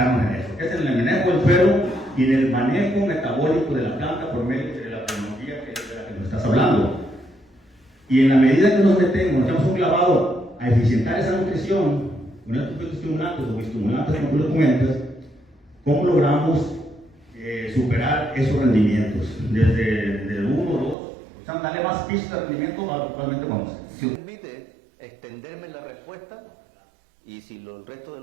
en eso, que es en el manejo del suelo y en el manejo metabólico de la planta por medio de la tecnología de la que nos estás hablando. Y en la medida que nos echamos un clavado a eficientar esa nutrición con estos fitoestimulantes o estimulantes como tú lo comentas, ¿cómo logramos superar esos rendimientos? Desde 1 o 2, o sea, darle más pistas de rendimiento a actualmente vamos. Si me permite extenderme en la respuesta, y si el resto de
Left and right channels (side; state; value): left; drops out; at 21.0 s